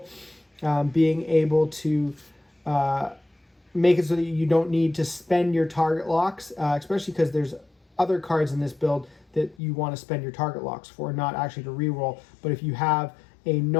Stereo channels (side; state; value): right; drops out; at 9.6 s